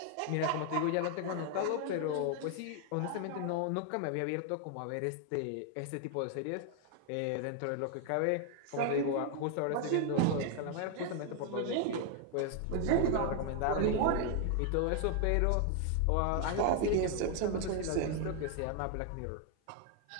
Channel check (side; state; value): both; different; correlation 0.00